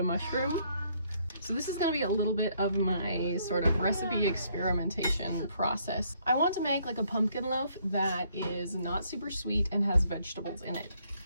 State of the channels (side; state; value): both; inverted; correlation -0.68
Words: mushroom? So this is going to be a little bit of my sort of recipe experimentation process. I want to make like a pumpkin loaf that is not super sweet and has vegetables in it.